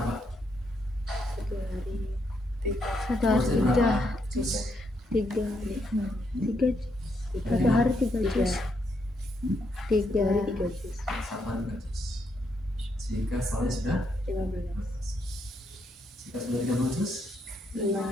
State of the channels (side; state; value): both; normal; correlation 0.77